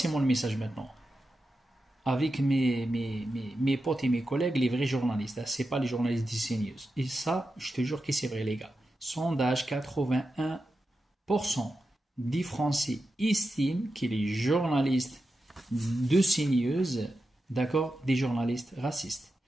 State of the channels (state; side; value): normal; both; correlation 0.90